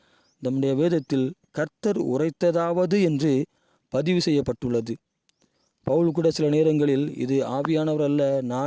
நம்முடைய வேதத்தில் கர்த்தர் உரைத்ததாவது என்று பதிவு செய்யப்பட்டுள்ளது. பவுல் கூட சில நேரங்களில் இது ஆவியானவர் அல்ல,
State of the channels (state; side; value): identical; both; correlation 1.00